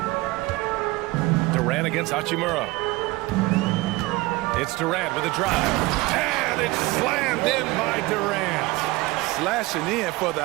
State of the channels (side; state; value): left; quieter; 21.4 dB